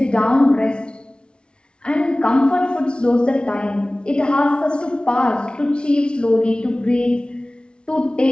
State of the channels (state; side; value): late; right; 0.057 ms